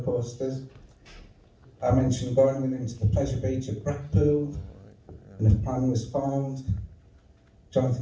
coasters. I mentioned going with him to the pleasure beach at Blackpool, and a plan was formed.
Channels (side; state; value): both; identical; correlation 1.00